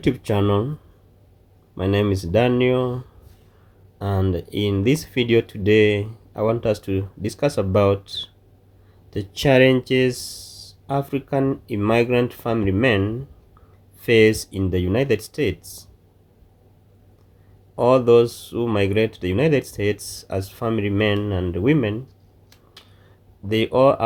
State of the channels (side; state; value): both; identical; correlation 1.00